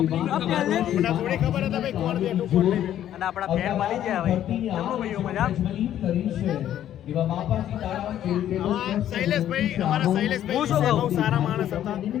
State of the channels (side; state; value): right; quieter; 11.3 dB